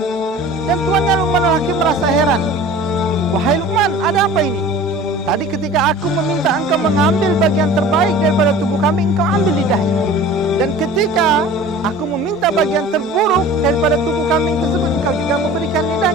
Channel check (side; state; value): both; normal; correlation 0.42